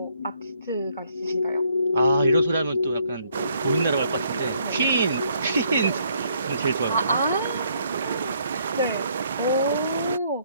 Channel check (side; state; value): both; inverted; correlation -0.69